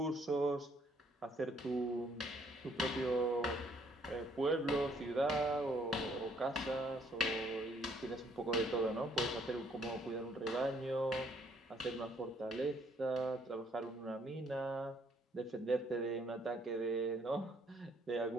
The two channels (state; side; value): normal; both; correlation 0.66